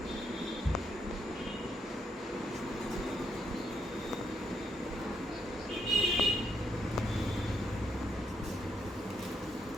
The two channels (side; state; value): both; normal; correlation 0.76